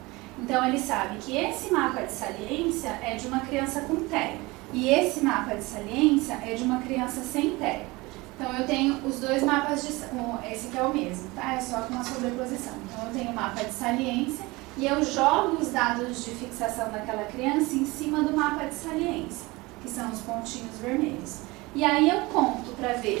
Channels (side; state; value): left; quieter; 22.7 dB